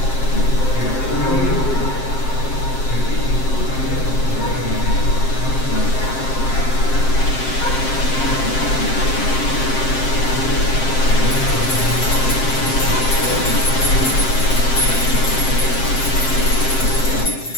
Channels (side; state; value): right; late; 7.6 ms